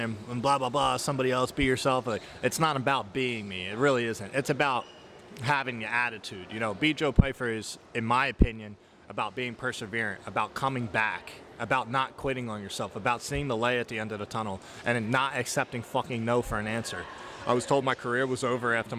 blah, blah, blah, somebody else, be yourself. Like, it's not about being me. It really isn't. It's about having the attitude. Be Joe Pyfer is, in my opinion, about being perseverant, about coming back, about not quitting on yourself, about seeing the light at the end of the tunnel and not accepting fucking no for an answer. I was told my career was over after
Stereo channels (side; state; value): both; identical; correlation 1.00